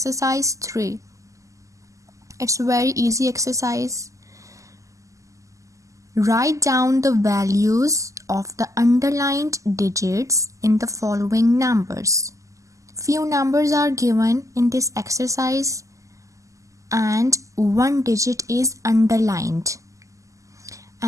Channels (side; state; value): left; late; 0.16 ms